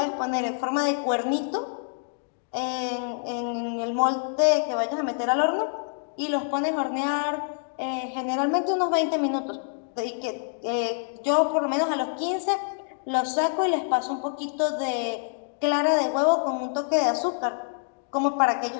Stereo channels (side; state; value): right; silent; digital silence